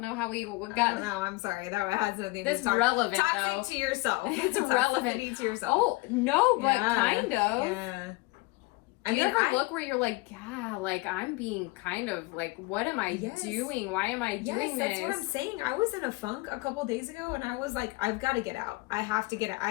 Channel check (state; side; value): quieter; right; 23.4 dB